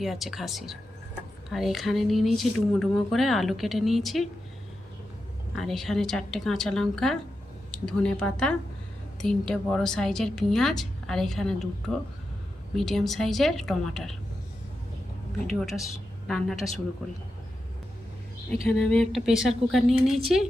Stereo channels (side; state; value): both; normal; correlation 0.89